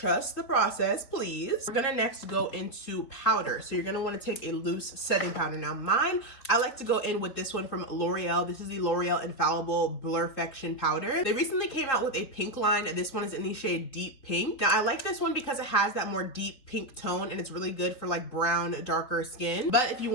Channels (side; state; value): right; late; 4.2 ms